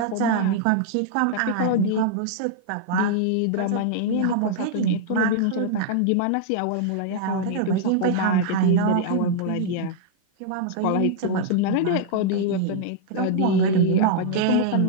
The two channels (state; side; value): different; both; correlation -0.01